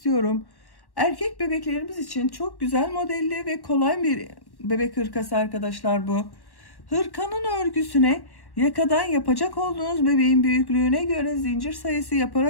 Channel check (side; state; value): right; late; 1.1 ms